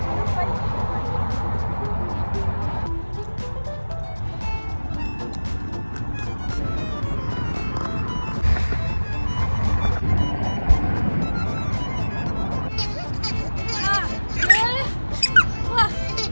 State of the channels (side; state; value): both; inverted; correlation -1.00